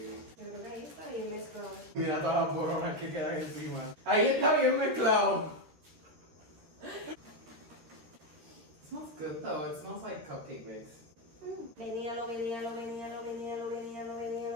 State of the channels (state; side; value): late; left; 13 ms